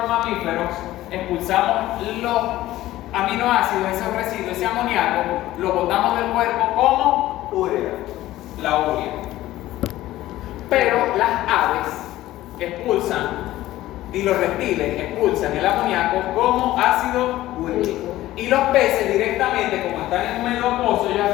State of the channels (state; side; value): quieter; right; 15.5 dB